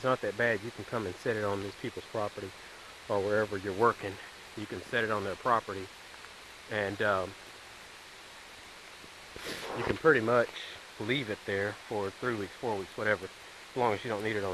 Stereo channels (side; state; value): both; identical; correlation 1.00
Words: not that bad. You can come and set it on these people's property or wherever you're working. You can set it on their property, and you can pretty much leave it there for 3 weeks, 4 weeks, whatever, as long as you don't need it